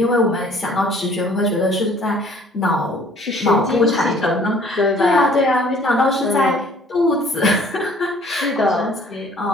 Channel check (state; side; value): normal; both; correlation 0.55